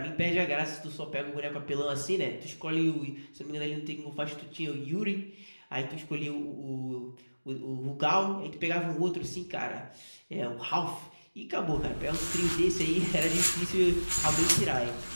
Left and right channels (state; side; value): inverted; both; correlation -1.00